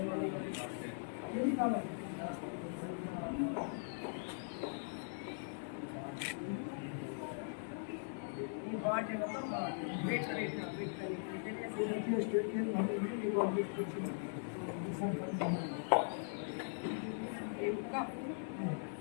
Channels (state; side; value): silent; right; 51 dB below the other